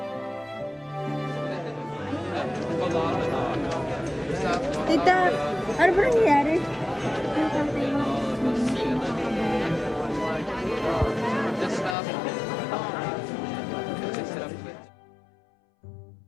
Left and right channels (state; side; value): drops out; right; at 12.0 s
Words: Tita, ano ba nangyayari?